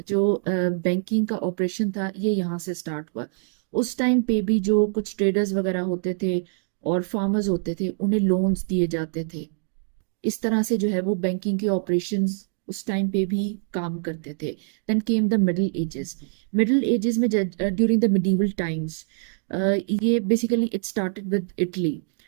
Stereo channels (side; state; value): left; silent; 62 dB below the other